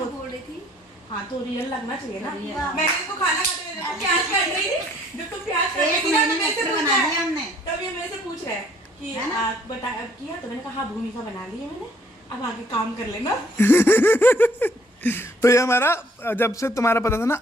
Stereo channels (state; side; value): normal; both; correlation 0.62